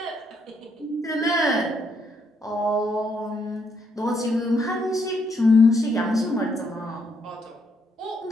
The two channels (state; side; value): normal; both; correlation 0.74